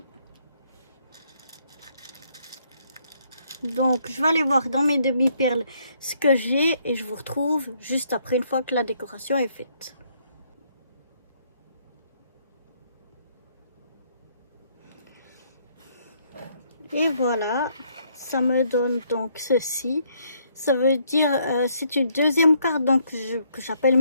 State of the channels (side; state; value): both; inverted; correlation -0.69